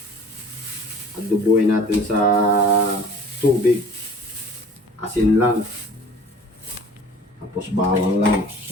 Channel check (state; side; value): normal; both; correlation 0.47